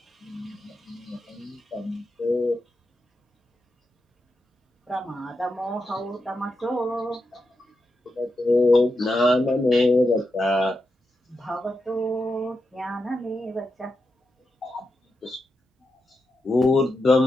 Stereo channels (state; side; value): normal; both; correlation 0.87